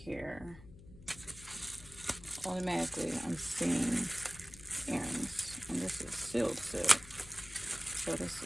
automatically I'm seeing earrings, and this is sealed silk. So this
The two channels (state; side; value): noise; left; hum, 18 dB below the sound